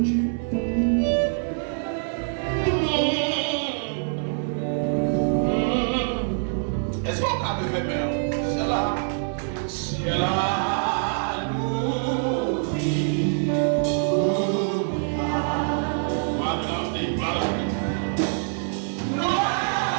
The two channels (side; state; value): left; silent; 62 dB below the other